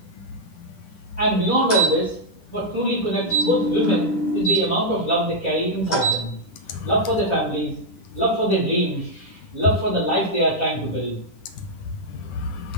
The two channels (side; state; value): right; late; 10 ms